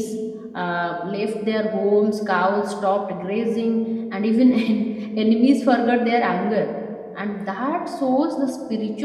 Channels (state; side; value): identical; both; correlation 1.00